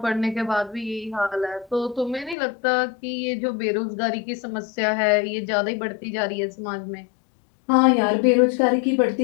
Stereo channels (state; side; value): drops out; right; at 2.4 s